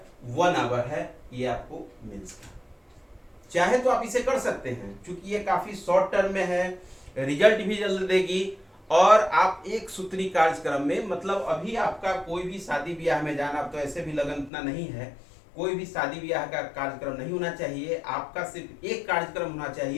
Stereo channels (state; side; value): drops out; right; at 14.5 s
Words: 1 आवर है। ये आपको मेंस का, चाहे तो आप इसे कर सकते हैं, क्योंकि ये काफी शॉर्ट टर्म में है, रिजल्ट भी जल्द देगी, और आप एक सूत्री कार्यक्रम में, मतलब अभी आपका कोई भी शादी ब्याह में जाना, तो ऐसे भी लगन इतना नहीं है, कोई भी शादी ब्याह का कार्यक्रम नहीं होना चाहिए। आपका सिर्फ एक कार्यक्रम होना